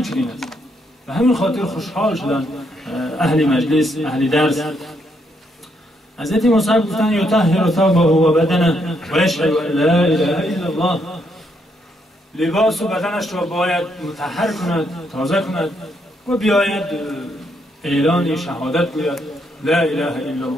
چنین است. و همین خاطر خوشحال شدند اهل مجلس، اهل درس. حضرت مصعب گفتند یطهر ثوبه و بدنه و یشهد ان لا اله الا الله، لباس و بدنش را باید مطهر کند، تازه کند و بیاید اعلان شهادت گوید لا اله الا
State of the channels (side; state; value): both; normal; correlation 0.75